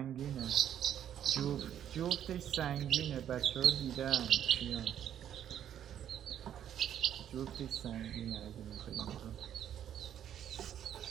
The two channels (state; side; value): quieter; left; 10.1 dB